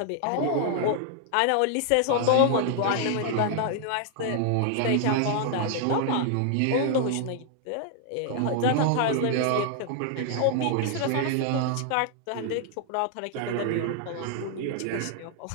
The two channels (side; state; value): both; different; correlation 0.00